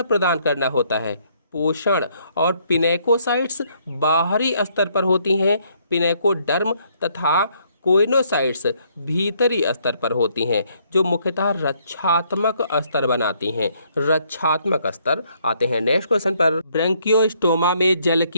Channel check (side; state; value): both; inverted; correlation -0.69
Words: प्रदान करना होता है, पोषण। और पिनेकोसाइट्स बाहरी स्तर पर होती हैं, पिनेकोडर्म। तथा कोइनोसाइट्स भीतरी स्तर पर होती हैं, जो मुख्यतः रक्षात्मक स्तर बनाती हैं, रक्षात्मक स्तर। आते हैं नेक्स्ट क्वेश्चन पर। ब्रैंकियोस्टोमा में जल